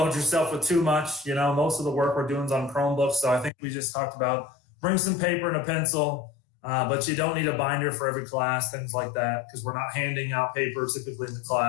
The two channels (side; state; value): right; drops out; at 3.5 s